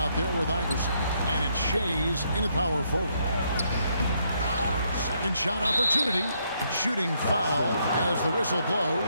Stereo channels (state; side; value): inverted; both; correlation -0.74